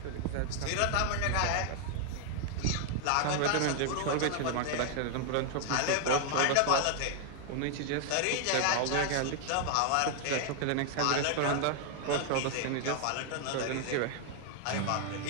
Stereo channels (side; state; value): both; different; correlation 0.00